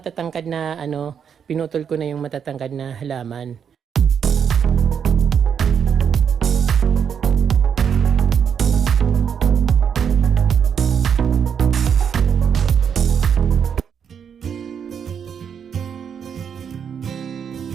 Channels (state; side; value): quieter; left; 7.6 dB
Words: na pinutol ko na yung matatangkad na halaman.